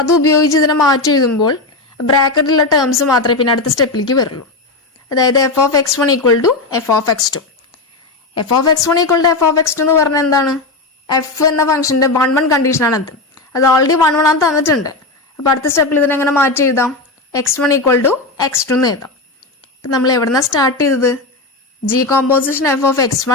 അത് ഉപയോഗിച്ച് ഇതിനെ മാറ്റി എഴുതുമ്പോൾ ബ്രാക്കറ്റിലുള്ള ടേംസ് മാത്രമേ പിന്നെ അടുത്ത സ്റ്റെപ്പിലേക്ക് വരുള്ളൂ. അതായത് F of x1 equal to F of x2. F of x1 equal to F of x2 എന്ന് പറഞ്ഞാൽ എന്താണ്? എഫ് എന്ന ഫംഗ്ഷന്റെ 1 1 കണ്ടീഷനാണ് അത് ഓൾറെഡി 1 1 ആണ് തന്നിട്ടുണ്ട്. അപ്പോൾ അടുത്ത സ്റ്റെപ്പിൽ ഇതിനെങ്ങനെ മാറ്റി എഴുതാം? x1 ഈക്വൽ ടു x2 എന്ന് എഴുതാം. ഇപ്പം നമ്മൾ എവിടെന്നാണ് സ്റ്റാർട്ട് ചെയ്തത്? G composition F of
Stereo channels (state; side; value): quieter; right; 3.3 dB